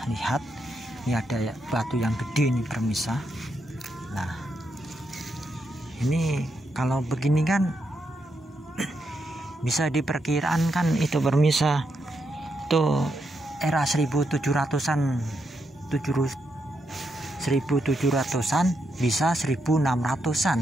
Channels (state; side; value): normal; both; correlation 0.82